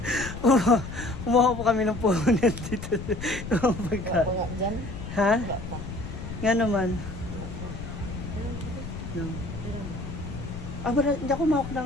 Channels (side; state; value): left; noise; rumble, 9 dB below the sound